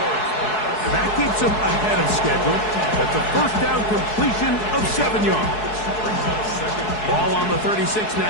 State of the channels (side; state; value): right; late; 4.7 ms